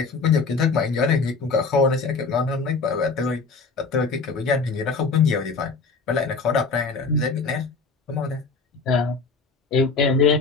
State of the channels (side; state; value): right; quieter; 4.4 dB